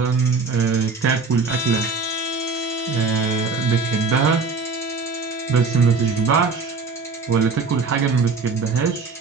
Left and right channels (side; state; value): left; quieter; 4.4 dB